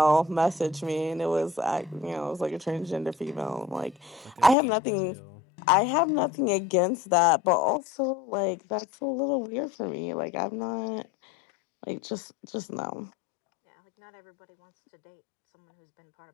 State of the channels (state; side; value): drops out; right; at 4.5 s